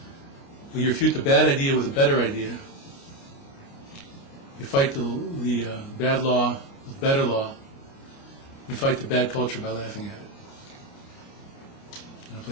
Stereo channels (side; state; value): right; late; 29 ms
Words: Well, you refute the bad idea with a better idea. You fight the bad law with better law. You fight the bad culture by laughing at it and